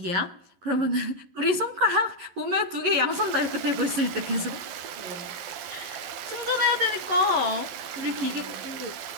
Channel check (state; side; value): late; left; 11 ms